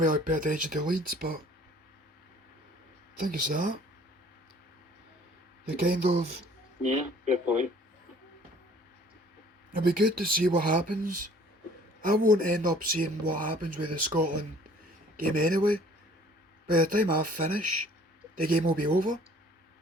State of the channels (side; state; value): both; normal; correlation 0.54